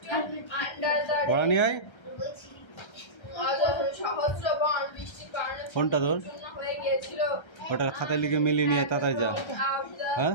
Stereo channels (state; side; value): late; right; 1.3 ms